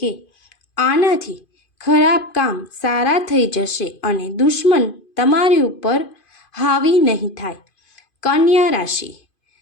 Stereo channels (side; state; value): right; late; 2.5 ms